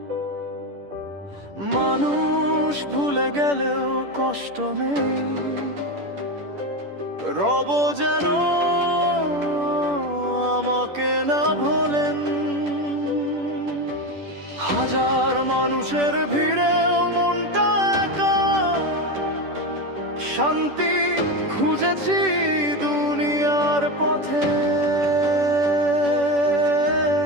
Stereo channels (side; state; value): left; late; 10 ms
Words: মানুষ ভুলে গেলেও কষ্ট নেই, রব যেন আমাকে না ভোলেন। হাজার মানুষের ভিড়েও মনটা একা, শান্তি খুঁজেছি দুনিয়ার পথে।